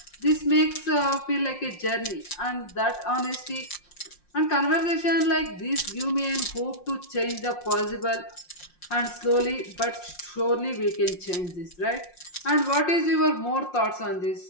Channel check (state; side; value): late; right; 5.6 ms